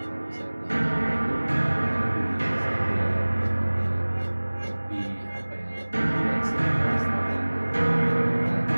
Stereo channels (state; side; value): inverted; both; correlation -1.00